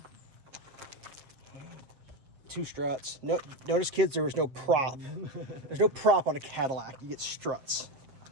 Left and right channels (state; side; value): late; left; 7.5 ms